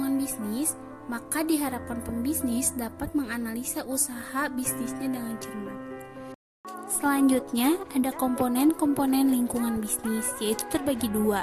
bisnis, maka diharapkan pembisnis dapat menganalisa usaha bisnisnya dengan cermat. Selanjutnya, ada komponen-komponen lingkungan bisnis, yaitu terbagi dua.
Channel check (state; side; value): identical; both; correlation 1.00